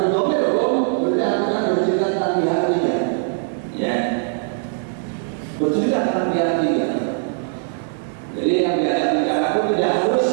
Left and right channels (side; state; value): left; silent; digital silence